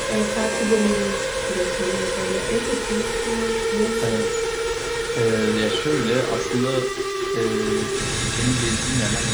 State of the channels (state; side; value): noise; left; hiss, 25 dB below the sound